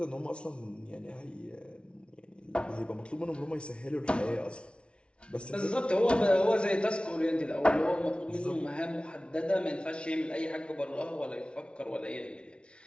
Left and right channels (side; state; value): right; late; 0.058 ms